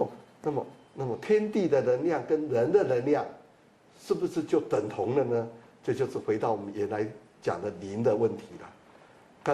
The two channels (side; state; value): both; identical; correlation 1.00